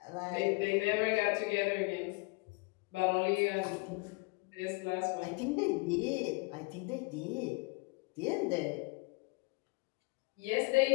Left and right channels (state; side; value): quieter; right; 28.5 dB